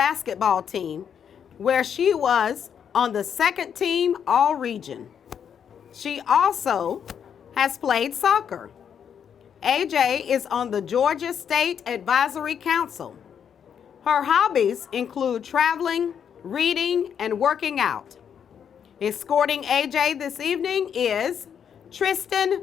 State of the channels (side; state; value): right; quieter; 8.0 dB